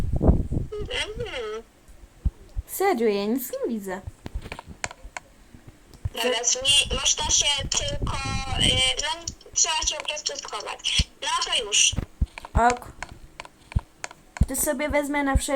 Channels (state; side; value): identical; both; correlation 1.00